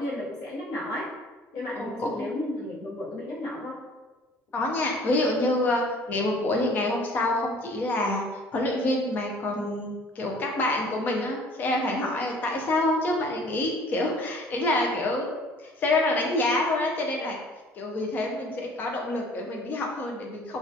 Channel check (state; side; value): normal; both; correlation 0.52